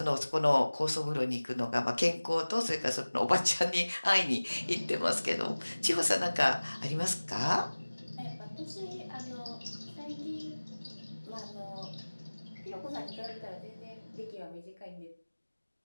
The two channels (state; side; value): inverted; both; correlation -1.00